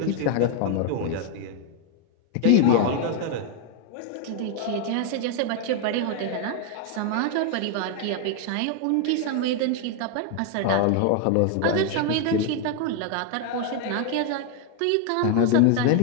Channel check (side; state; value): both; different; correlation 0.01